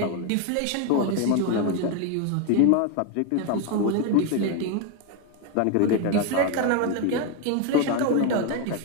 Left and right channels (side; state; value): both; different; correlation 0.01